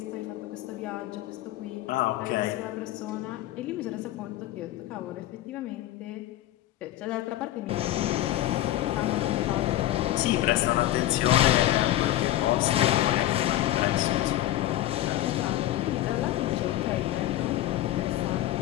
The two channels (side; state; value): right; quieter; 14.5 dB